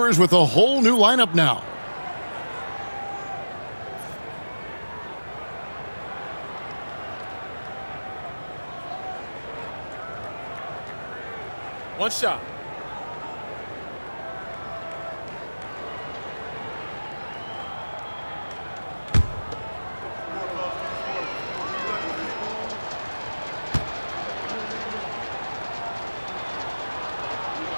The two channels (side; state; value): both; inverted; correlation -1.00